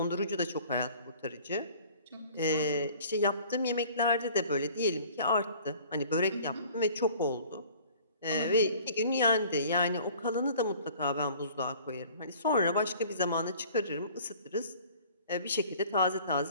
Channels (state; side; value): inverted; both; correlation -0.50